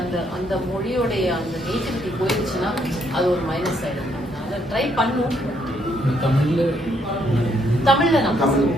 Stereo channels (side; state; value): both; normal; correlation 0.72